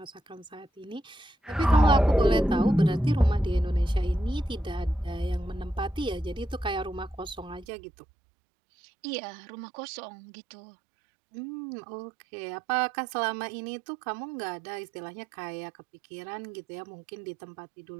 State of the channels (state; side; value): drops out; left; at 7.7 s